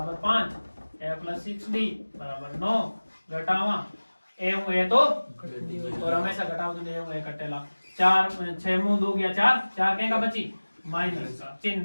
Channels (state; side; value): inverted; both; correlation -1.00